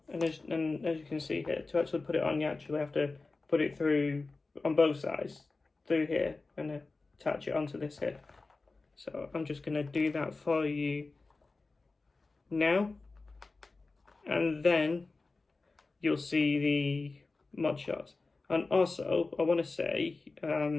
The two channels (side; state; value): right; quieter; 3.7 dB